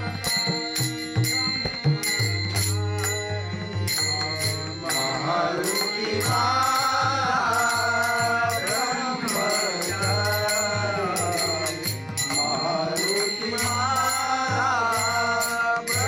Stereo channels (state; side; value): noise; left; hum, 28 dB below the sound